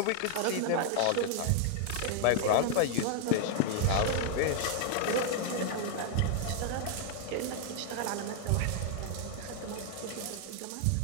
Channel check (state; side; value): different; both; correlation 0.00